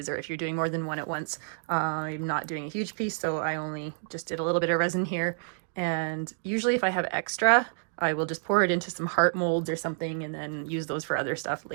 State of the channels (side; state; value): left; silent; digital silence